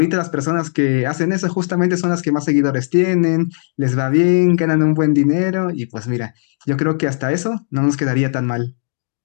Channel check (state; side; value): silent; right; digital silence